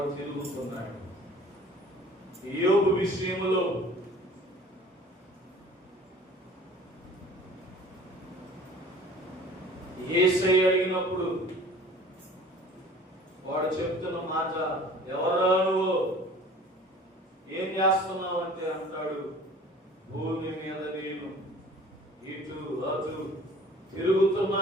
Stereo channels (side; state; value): both; normal; correlation 0.47